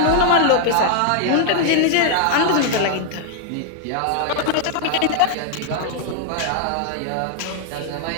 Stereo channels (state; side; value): different; both; correlation 0.00